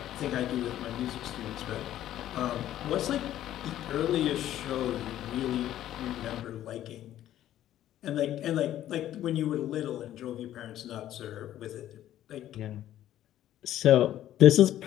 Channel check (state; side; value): quieter; right; 12.5 dB